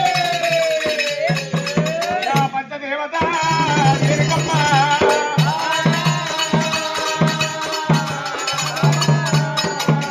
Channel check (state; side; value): identical; both; correlation 1.00